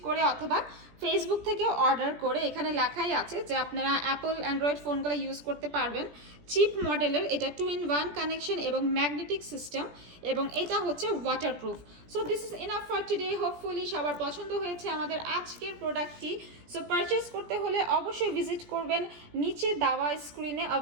করে অথবা ফেসবুক থেকে অর্ডার করে। এখানে লেখাই আছে যে আপনারা অ্যাপল অ্যান্ড্রয়েড ফোনগুলো ইউজ করতে পারবেন। চিপ মডেলের এটা 2-in-1 কানেকশন এবং ম্যাগনেটিক সিস্টেম, এবং এটা হচ্ছে waterproof. So this is enough for today. Hopefully সবার পছন্দ হয়েছে আমাদের আজকের প্রোডাক্টটি। সো পারচেস করতে হলে অবশ্যই ভিজিট করবেন নিচে দেওয়া স্ক্রিনে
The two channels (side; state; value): left; late; 17 ms